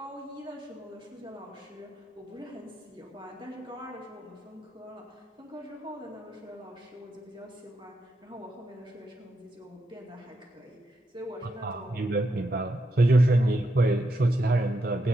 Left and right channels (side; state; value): both; normal; correlation 0.82